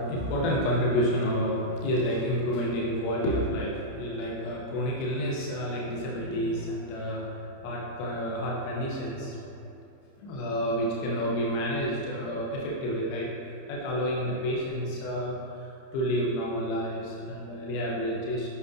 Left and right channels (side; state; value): right; late; 30 ms